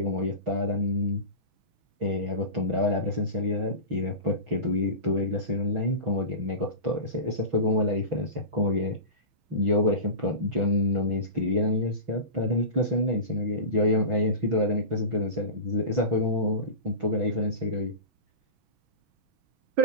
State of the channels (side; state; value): left; late; 6.1 ms